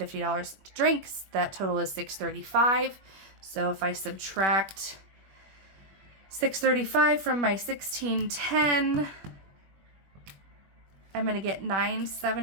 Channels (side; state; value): left; late; 21 ms